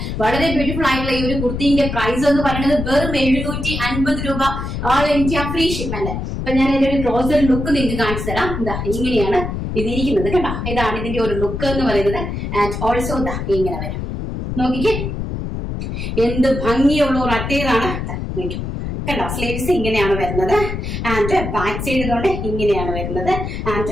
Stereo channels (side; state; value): left; noise; rumble, 4 dB below the sound